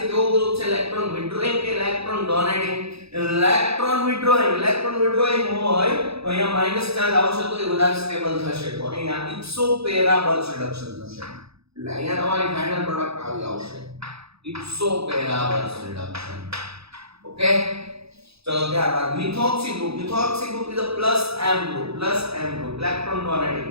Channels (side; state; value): left; late; 0.78 ms